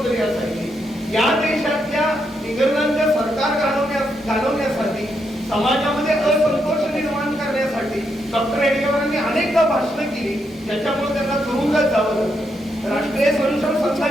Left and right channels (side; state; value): both; normal; correlation 0.80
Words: असायची. या देशातल्या इंग्रजांच्या सरकार घालवण्यासाठी समाजामध्ये असंतोष निर्माण करण्यासाठी डॉक्टर हेडगेवारांनी अनेकदा भाषणं केली ज्याच्यामुळे त्यांना तुरुंगात जावं लागलं. राष्ट्रीय स्वयंसेवक